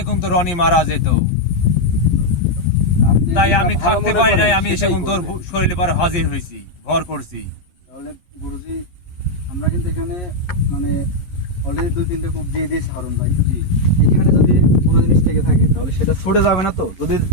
কিন্তু রনি মারা যেত। তাই আমি থাকতে পারি নাই, আমি এসে কিন্তু তোর শরীরে পর হাজির হয়েছি, ভর করছি। তাহলে গুরুজি আমরা কিন্তু এখানে মানে অলরেডি 2-3টে কূপ দিয়ে দিয়েছি হারুন ভাই। এখানে যদি কোনো জিনিস থেকে থাকে তাহলে সেটা ছুটে যাবে না তো? যদি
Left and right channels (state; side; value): late; right; 11 ms